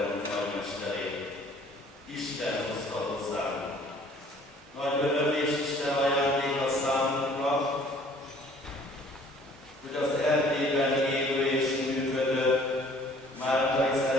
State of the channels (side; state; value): both; normal; correlation 0.55